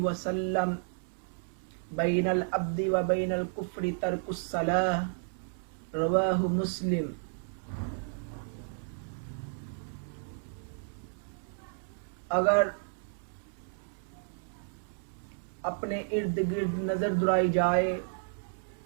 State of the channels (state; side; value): silent; left; digital silence